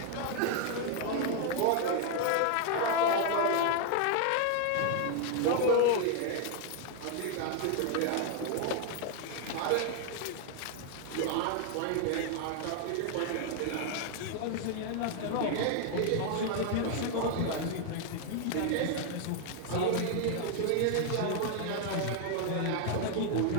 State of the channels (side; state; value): both; different; correlation 0.00